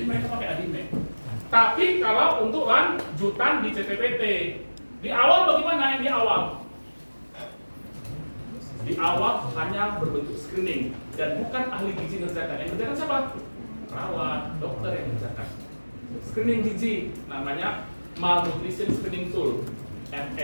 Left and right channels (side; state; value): both; inverted; correlation -1.00